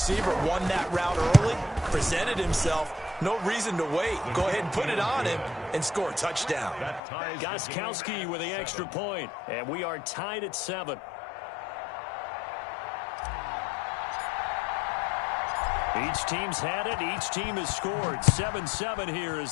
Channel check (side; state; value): right; drops out; at 7.0 s